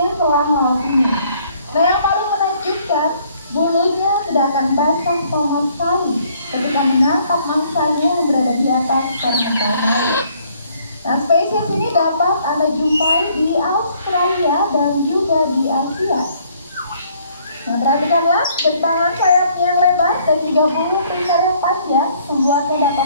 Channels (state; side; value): inverted; both; correlation -0.63